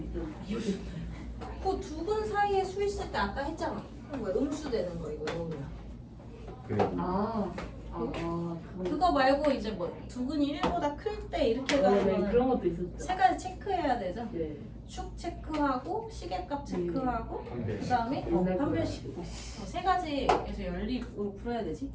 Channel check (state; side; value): identical; both; correlation 1.00